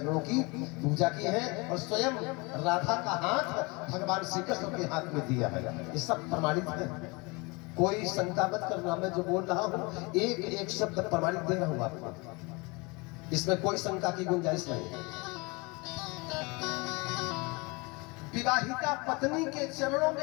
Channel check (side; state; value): right; quieter; 27.2 dB